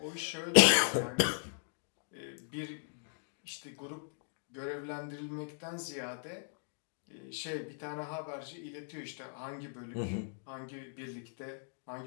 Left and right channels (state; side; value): silent; right; digital silence